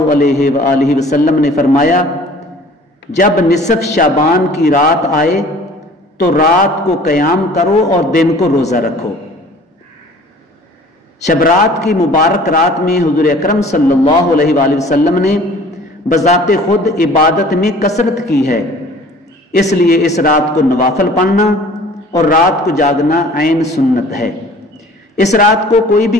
علیہ وآلہ وسلم نے فرمایا، جب نصف شعبان کی رات آئے تو رات کو قیام کرو اور دن کو روزہ رکھو۔ شب رات کی مبارک رات میں حضور اکرم صلی اللہ علیہ وآلہ وسلم نے بذات خود عبادت میں کثرت کی ہے، اس لیے اس رات کو نوافل پڑھنا اور رات کو جاگنا عین سنت ہے۔ اس رات کو کوئی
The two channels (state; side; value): normal; both; correlation 0.49